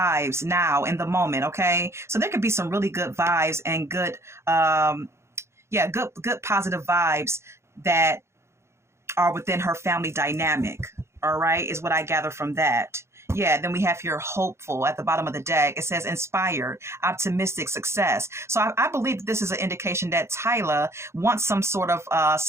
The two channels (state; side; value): late; left; 0.13 ms